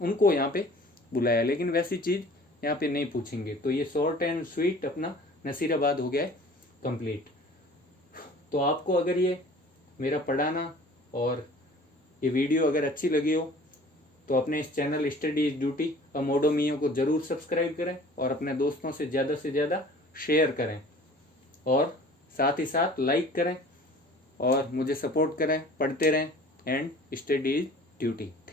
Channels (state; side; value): normal; both; correlation 0.47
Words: यहाँ पे बुलाया। लेकिन वैसी चीज यहाँ पे नहीं पूछेंगे। तो ये शॉर्ट एंड स्वीट अपना नसीराबाद हो गया है कंप्लीट। तो आपको अगर ये मेरा पढ़ाना और ये वीडियो अगर अच्छी लगी हो तो अपने इस चैनल स्टडी इज ड्यूटी अमोडोमियो को जरूर सब्सक्राइब करें और अपने दोस्तों से ज़्यादा शेयर करें, और साथ ही साथ लाइक करें और मुझे सपोर्ट करें, पढ़ते रहें। And study is duty.